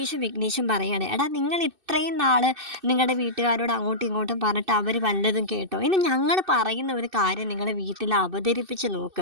വിഘ്നേഷും പറയാണ്, എടാ നിങ്ങൾ ഇത്രയും നാൾ നിങ്ങളുടെ വീട്ടുകാരോട് അങ്ങോട്ടും ഇങ്ങോട്ടും പറഞ്ഞിട്ട് അവർ വല്ലതും കേട്ടോ? ഇനി ഞങ്ങൾ പറയുന്ന ഒരു കാര്യം നിങ്ങൾ വീട്ടിൽ അവതരിപ്പിച്ച്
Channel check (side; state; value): left; late; 2.6 ms